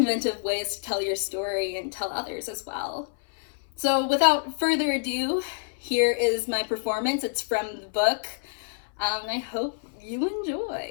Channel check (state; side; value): silent; right; 60 dB below the other